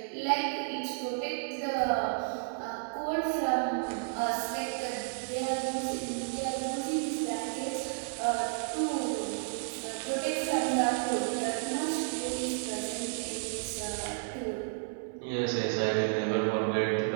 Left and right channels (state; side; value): silent; left; 56 dB below the other